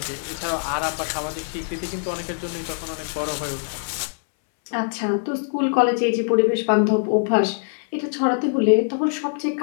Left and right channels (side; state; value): right; silent; 63 dB below the other